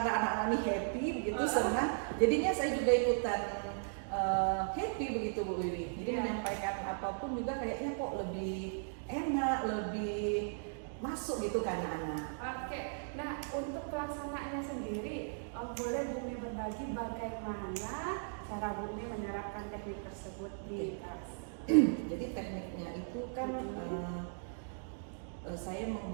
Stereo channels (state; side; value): silent; left; digital silence